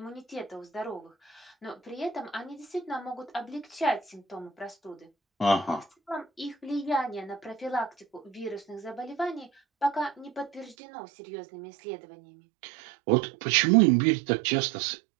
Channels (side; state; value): left; drops out; at 10.8 s